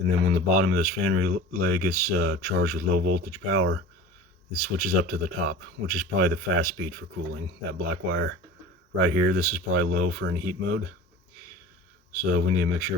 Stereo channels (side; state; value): both; normal; correlation 0.37